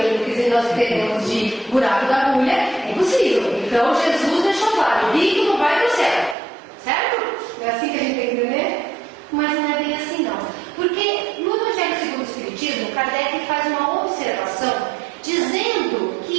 o que nós entendemos de buraco da agulha, é impossível. Então Jesus deixou claro: o rico não vai para o céu. Certo? É assim que a gente tem que entender? Mas não é bem assim não. Porque no Evangelho segundo o Espiritismo, Kardec faz uma observação dizendo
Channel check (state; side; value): drops out; left; at 6.4 s